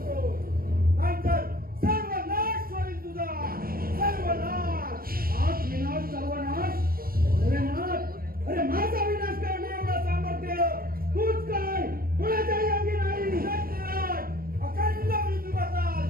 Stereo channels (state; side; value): late; left; 0.43 ms